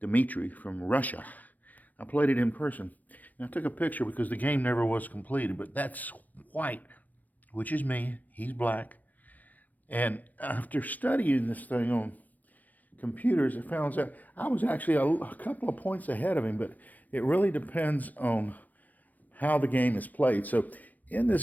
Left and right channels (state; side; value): late; right; 0.082 ms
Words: from Russia. I played it in person, and I took a picture because the game never was completed, but that's white, which is me. He's black. And after studying this thing on computers, it found out I was actually a couple of points ahead of him, but it really depends on how the game is played. So in